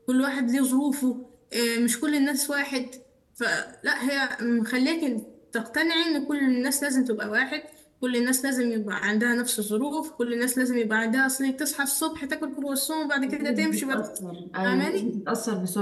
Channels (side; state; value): both; identical; correlation 1.00